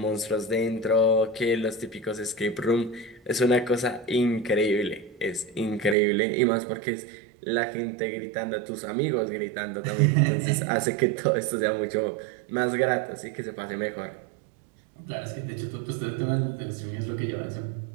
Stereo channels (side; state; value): left; drops out; at 6.0 s